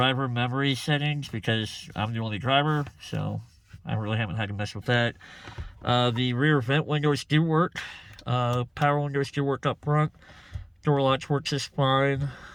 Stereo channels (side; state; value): both; identical; correlation 1.00